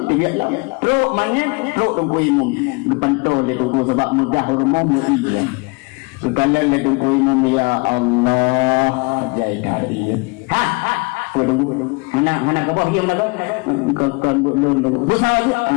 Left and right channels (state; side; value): quieter; right; 29.4 dB